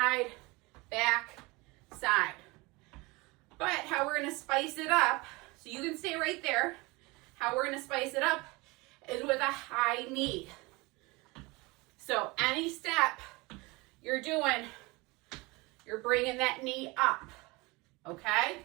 back, side. But how we're gonna spice it up, so you can stay right there. How we're gonna spice it up is with a high knee. So any step you're doing, you're bringing that knee up, okay?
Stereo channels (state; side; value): quieter; left; 24.3 dB